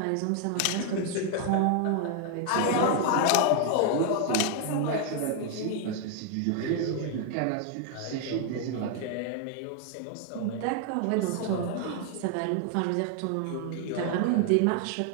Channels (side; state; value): both; different; correlation 0.00